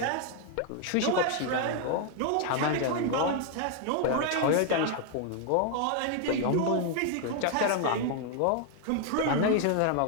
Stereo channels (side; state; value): both; different; correlation 0.00